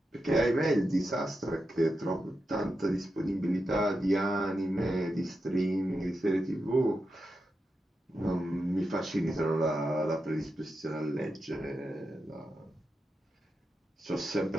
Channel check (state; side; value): normal; both; correlation 0.88